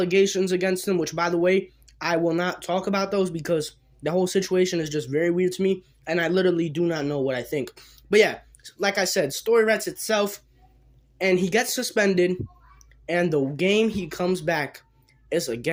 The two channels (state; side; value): identical; both; correlation 1.00